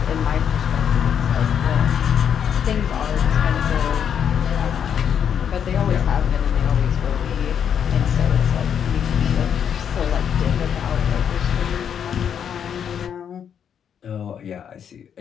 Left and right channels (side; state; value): right; quieter; 8.2 dB